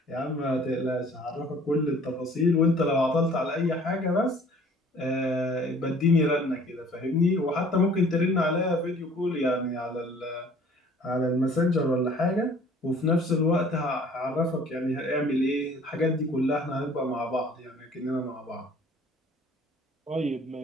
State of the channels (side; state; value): both; normal; correlation 0.52